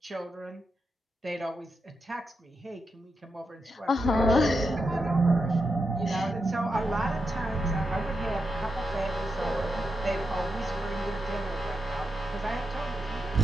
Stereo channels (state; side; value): normal; both; correlation 0.86